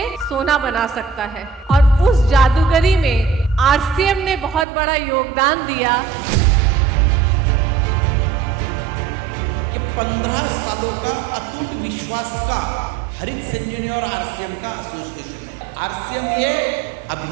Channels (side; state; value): left; drops out; at 4.7 s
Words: सोना बना सकता है। और उस जादूगरी में आरसीएम ने बहुत बड़ा योगदान दिया। 15 सालों का अटूट विश्वास का हरित संजीवनी और आरसीएम का एसोसिएशन है। आरसीएम ये